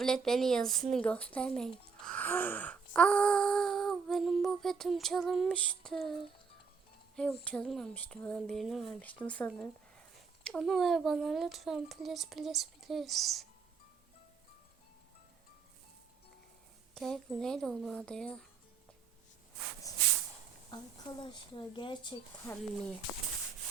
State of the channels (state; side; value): quieter; left; 5.5 dB